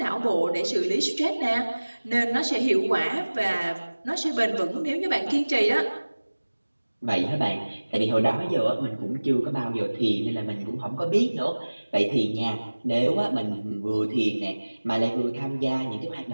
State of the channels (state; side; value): inverted; both; correlation -1.00